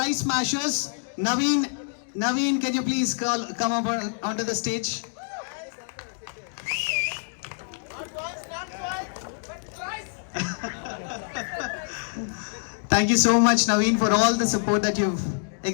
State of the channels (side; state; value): right; silent; digital silence